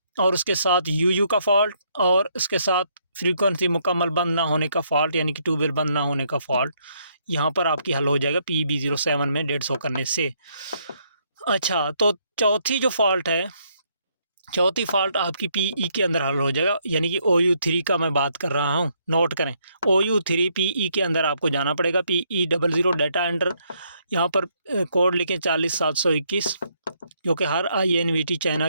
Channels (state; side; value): inverted; both; correlation -0.72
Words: और उसके साथ UU का फॉल्ट, और उसके साथ फ्रीक्वेंसी मुकम्मल बंद ना होने का फॉल्ट यानी कि ट्यूबवेल बंद ना होने का फॉल्ट। यहाँ पर आपकी हल हो जाएगा PB07 में 150 करने से। अच्छा, तो चौथी जो फॉल्ट है, चौथी फॉल्ट आपकी PE के अंदर हल हो जाएगा, यानी कि OU3 का मैं बात कर रहा हूँ। नोट करें, OU3 PE के अंदर आपको जाना पड़ेगा। PE00 डेटा एंटर, यहाँ पर कोड लिखें 40721, जो कि हर INVT चाइना